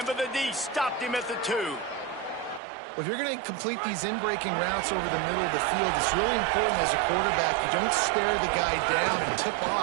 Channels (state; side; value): drops out; left; at 2.6 s